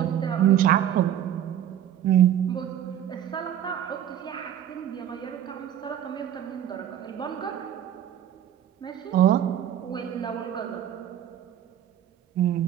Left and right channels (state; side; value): quieter; left; 10.7 dB